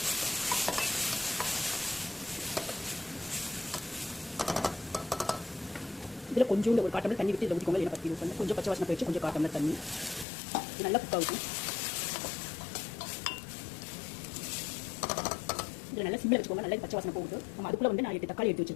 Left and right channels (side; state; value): right; drops out; at 10.2 s